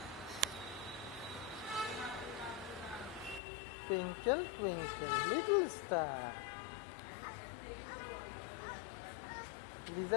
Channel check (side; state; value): right; drops out; at 3.4 s